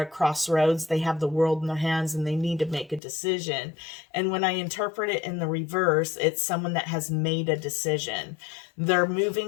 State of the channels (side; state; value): right; drops out; at 3.0 s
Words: crossroads. They have the world in their hands and they need to make a decision. And when I interpret it in the reverse, it's someone that has made a decision. They're